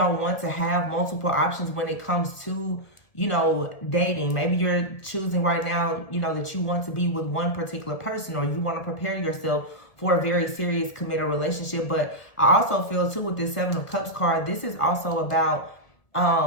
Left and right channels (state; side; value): late; right; 1.7 ms